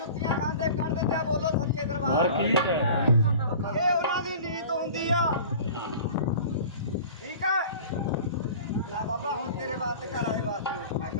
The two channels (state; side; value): inverted; both; correlation -0.40